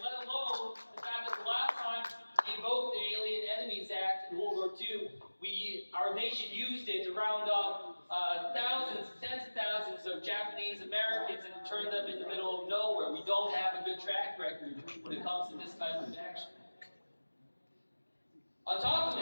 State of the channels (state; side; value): inverted; both; correlation -1.00